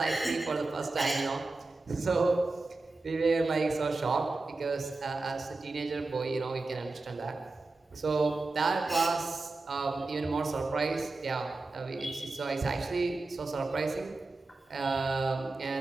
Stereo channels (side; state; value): left; quieter; 3.4 dB